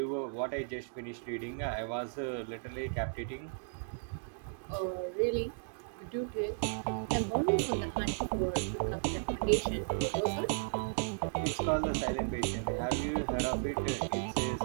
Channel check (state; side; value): silent; left; digital silence